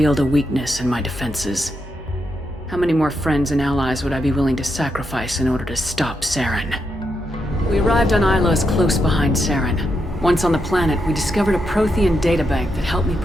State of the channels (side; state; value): both; normal; correlation 0.83